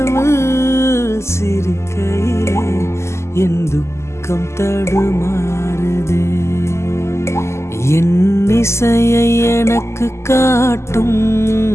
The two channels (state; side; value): late; right; 0.13 ms